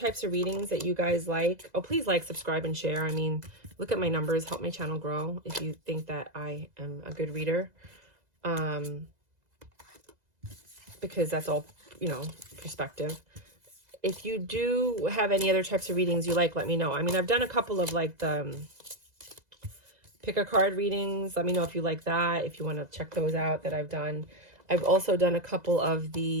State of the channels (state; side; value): late; left; 2.0 ms